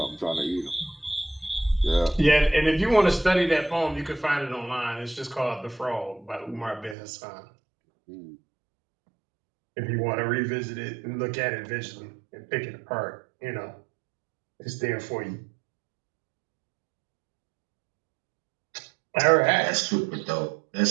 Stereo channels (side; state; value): left; drops out; at 7.0 s